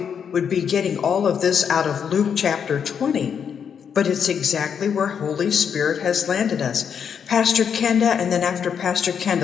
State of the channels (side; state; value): right; quieter; 7.4 dB